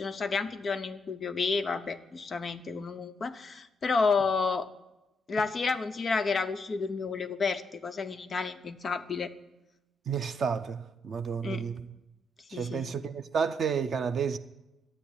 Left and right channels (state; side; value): normal; both; correlation 0.77